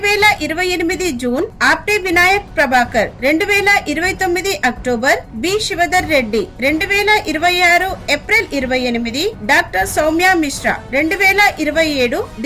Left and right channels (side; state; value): both; identical; correlation 1.00